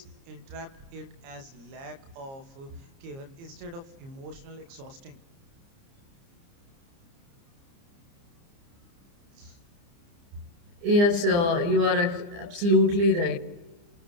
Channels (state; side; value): late; left; 29 ms